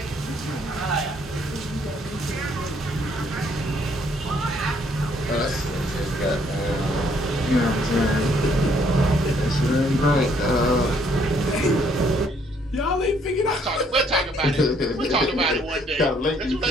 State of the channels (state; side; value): normal; both; correlation 0.66